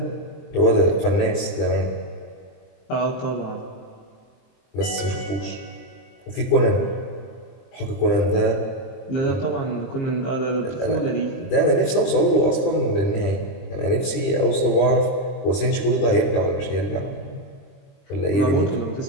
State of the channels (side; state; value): right; late; 23 ms